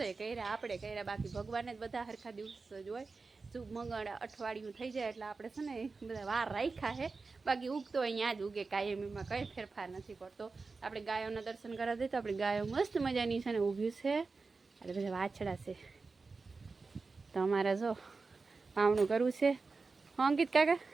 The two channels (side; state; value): left; quieter; 4.2 dB